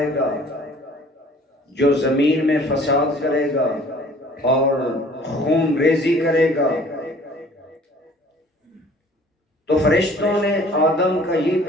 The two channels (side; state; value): both; normal; correlation 0.52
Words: گا جو زمین میں فساد کرے گا اور خون ریزی کرے گا؟ تو فرشتوں نے آدم کا یہ